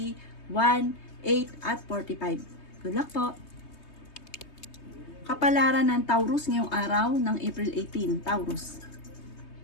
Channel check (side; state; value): right; late; 3.2 ms